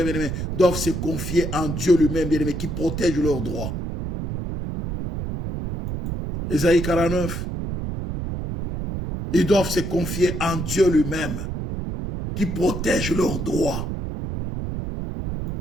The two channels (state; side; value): noise; right; rumble, 4 dB below the sound